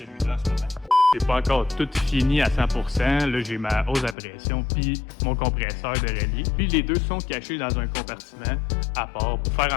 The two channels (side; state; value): right; drops out; at 4.2 s